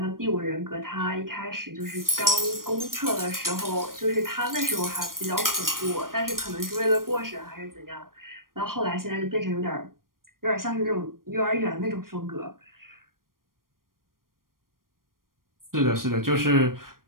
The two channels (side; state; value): left; late; 0.91 ms